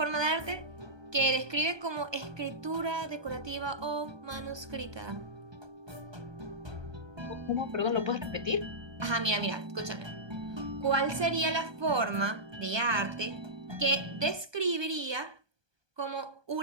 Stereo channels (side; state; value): left; late; 1.2 ms